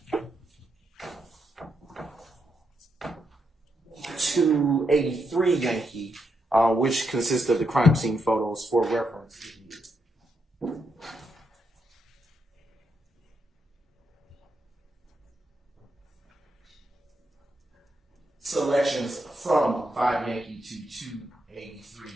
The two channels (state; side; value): normal; both; correlation 0.81